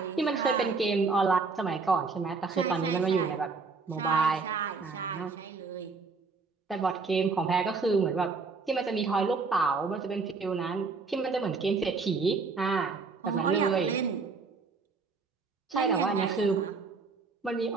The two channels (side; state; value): left; quieter; 4.5 dB